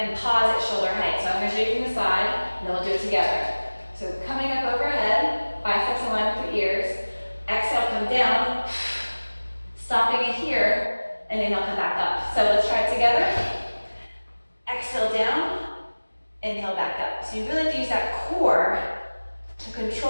pause at shoulder height. So I'm gonna show you from the side, and then we'll do it together. So coming up overhead, biceps in line with the ears, exhale, come down, stopping it here, and inhale, come back up. So let's try it together. Exhale down, inhale back up. So you really have to use that core to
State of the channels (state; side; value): inverted; both; correlation -1.00